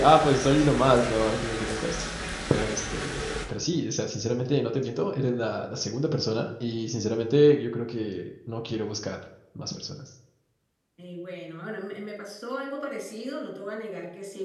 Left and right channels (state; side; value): identical; both; correlation 1.00